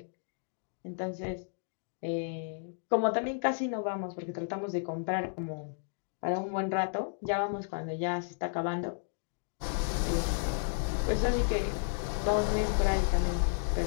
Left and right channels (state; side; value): silent; right; digital silence